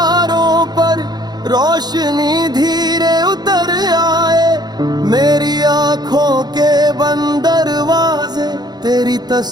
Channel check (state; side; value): late; left; 0.20 ms